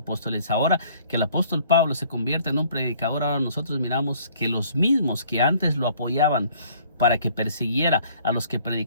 Ahora que el apóstol Pablo se convierte en un predicador, ahora nosotros miramos que los mismos que antes lo apoyaban para que persiguiera a los que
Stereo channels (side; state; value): both; inverted; correlation -0.57